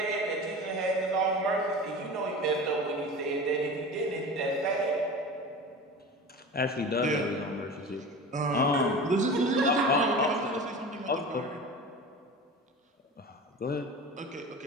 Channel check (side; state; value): both; normal; correlation 0.33